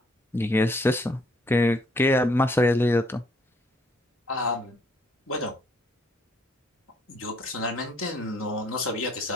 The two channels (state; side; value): normal; both; correlation 0.66